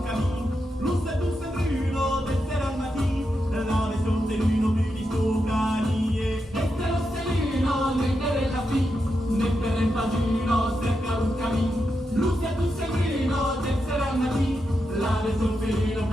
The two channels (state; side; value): normal; both; correlation 0.86